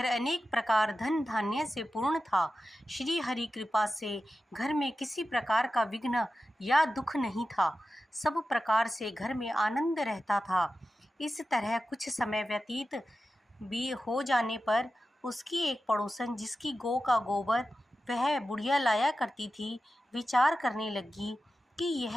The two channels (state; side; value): normal; both; correlation 0.93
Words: अनेक प्रकार धन धान्य से पूर्ण था। श्री हरि कृपा से घर में किसी प्रकार का विघ्न या दुख नहीं था। सब प्रकार से घर में आनंद रहता था। इस तरह कुछ समय व्यतीत भी हो जाने पर उसकी एक पड़ोसन, जिसकी गौ का गोबर वह बुढ़िया लाया करती थी, विचार करने लगी कि